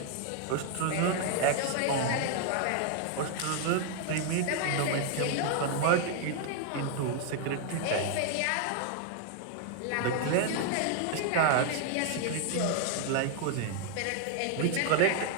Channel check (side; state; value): both; different; correlation 0.00